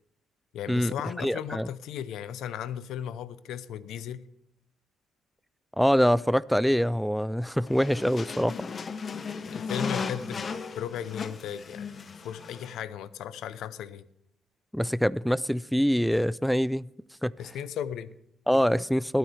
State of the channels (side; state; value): both; normal; correlation 0.95